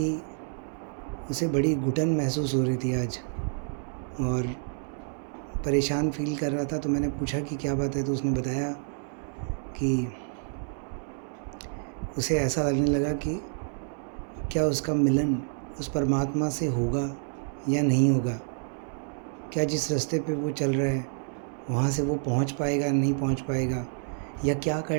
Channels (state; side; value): silent; left; 55 dB below the other